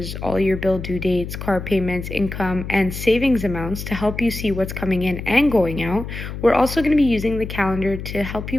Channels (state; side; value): noise; left; hum, 8 dB below the sound